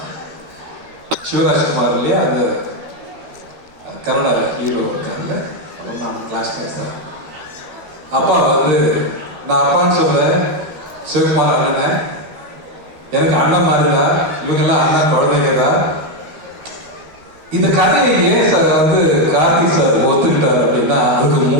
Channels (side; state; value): left; late; 12 ms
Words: சிவராஜ்குமார் இல்லையா, அந்த கன்னட ஹீரோ இருக்கார்ல, நான் கிளாஸ்மேட் தான். அப்பா வந்து நான் அப்பான்னு சொல்கிறேன், சிவகுமார் அண்ணனை எனக்கு அண்ணன் மாதிரிதா, இவங்கெல்லாம் அண்ணன் குழந்தைங்க தான். இந்த கதையை ஏன் சார் வந்து கார்த்திக் சார் ஒத்துக்கிட்டார் அப்படின்னா, அதுக்கு